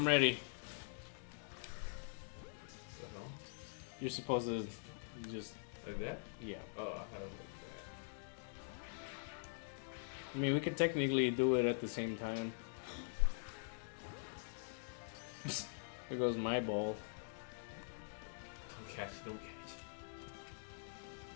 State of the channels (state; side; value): silent; right; digital silence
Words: ready. The hell? You're supposed to just Like that? yeah. Oh, I thought it was like that. I mean, we could technically do it at the same time. There goes my ball. Don't catch it. Don't catch it.